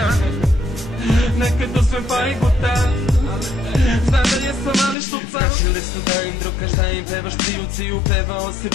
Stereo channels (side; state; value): right; drops out; at 5.0 s